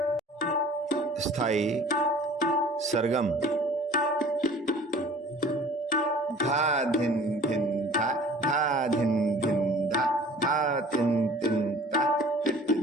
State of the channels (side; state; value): both; normal; correlation 0.48